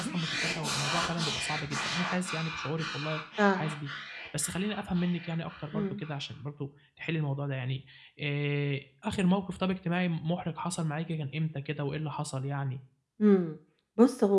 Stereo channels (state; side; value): identical; both; correlation 1.00